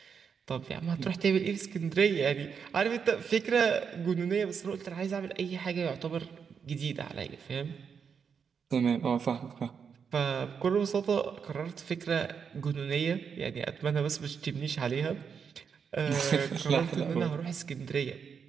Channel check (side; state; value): left; quieter; 6.5 dB